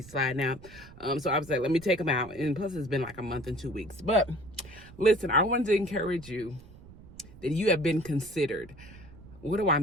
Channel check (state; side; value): noise; right; rumble, 20 dB below the sound